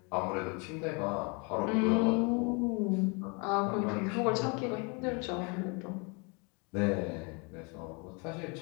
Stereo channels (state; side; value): quieter; right; 32.3 dB